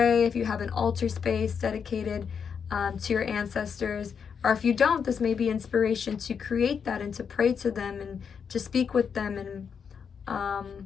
if you have an altar space dedicated to your ancestors, or if you don't, this may be inspiration to create that and to pray to them and to speak with them and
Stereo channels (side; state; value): right; quieter; 6.7 dB